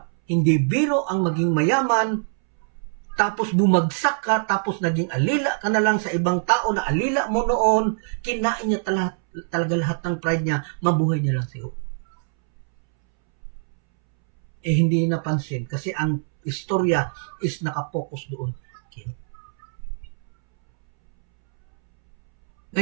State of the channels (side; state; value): left; silent; 63 dB below the other